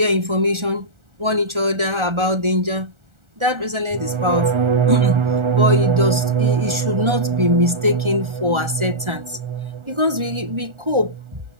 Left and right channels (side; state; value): left; late; 1.4 ms